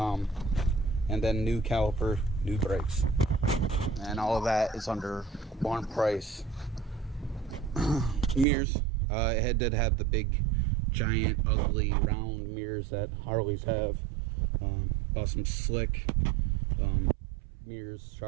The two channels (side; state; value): left; drops out; at 8.5 s